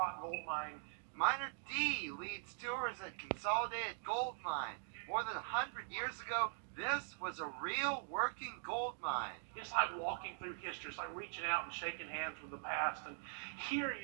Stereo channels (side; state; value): left; silent; digital silence